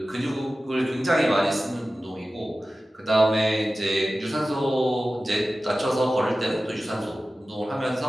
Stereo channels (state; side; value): normal; both; correlation 0.95